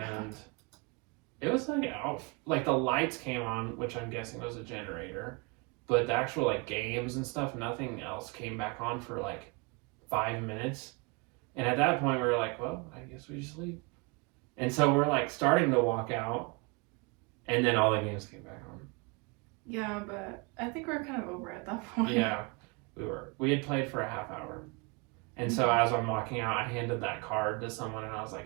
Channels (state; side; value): quieter; left; 29.1 dB